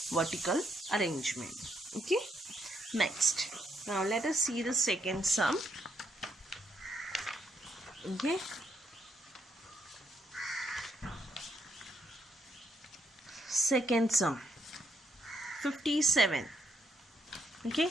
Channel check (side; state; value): both; normal; correlation 0.75